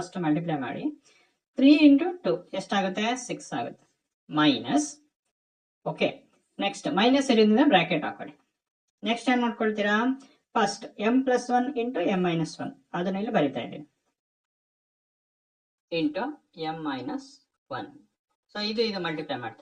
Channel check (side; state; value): both; identical; correlation 1.00